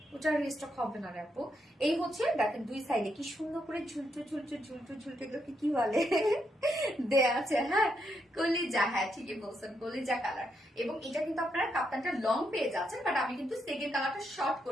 ওটা রিস্টক হবে না রে আপু। এই হচ্ছে দেখেন দুই সাইডে কি সুন্দর করে ঝুলটু ঝুলটু ঝুলটু ঝুলটু, এগুলোকে কি বলে দেয়া আছে। হ্যাঁ কলিজা, হ্যাঁ ঠিকই বলছেন, কলিজা কালার। এবং এটা কিন্তু আপনারা কাপ্তানটা লং পেয়ে যাচ্ছেন, বাট আমি কিন্তু সেকেন্ড কালারটা শর্ট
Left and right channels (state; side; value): normal; both; correlation 0.80